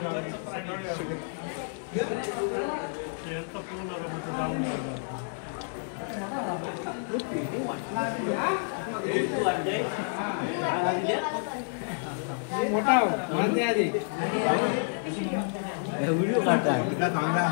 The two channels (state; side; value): silent; right; digital silence